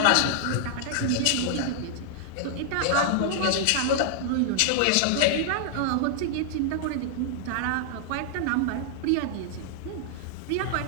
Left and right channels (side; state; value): both; different; correlation -0.01